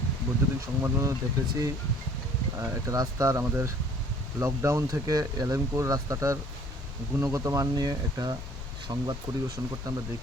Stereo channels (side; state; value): both; normal; correlation 0.54